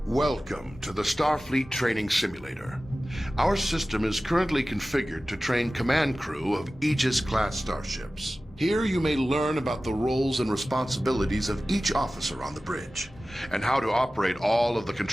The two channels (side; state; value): both; normal; correlation 0.96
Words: Welcome to the Starfleet Training Simulator. Our system is currently configured to train command crew of Aegis-class starships. Here you may learn about the roles and responsibilities of each officer on the bridge, and how to operate all of the